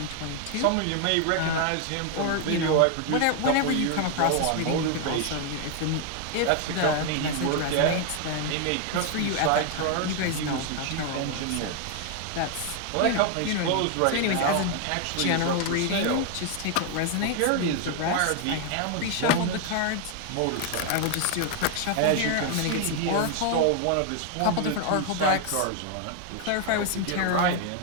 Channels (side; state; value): both; different; correlation 0.00